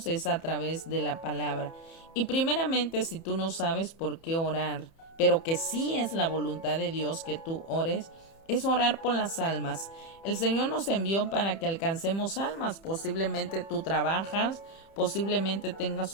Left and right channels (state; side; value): late; right; 30 ms